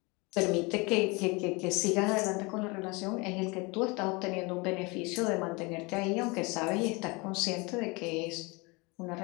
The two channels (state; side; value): quieter; right; 27.1 dB